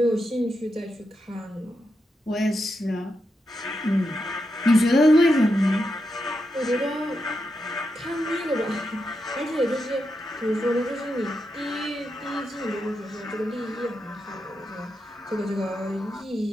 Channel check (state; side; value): normal; both; correlation 0.86